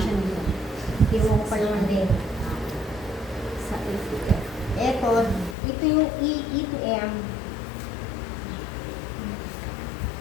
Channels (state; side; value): drops out; right; at 5.6 s